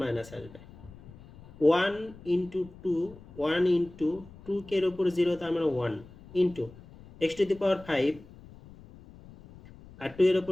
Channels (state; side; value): noise; left; rumble, 20 dB below the sound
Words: মাইনাস আসবে। 1 ইন্টু 2, 1 ইন্টু 2k এর উপর 0, তার মানে 1 into x to the power 5, আর 2 এর উপর